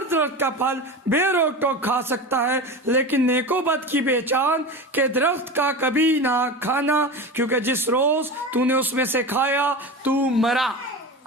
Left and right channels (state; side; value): normal; both; correlation 0.27